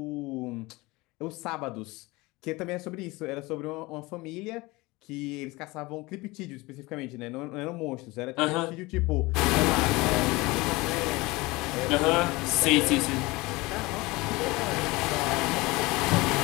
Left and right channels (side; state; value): right; quieter; 22.4 dB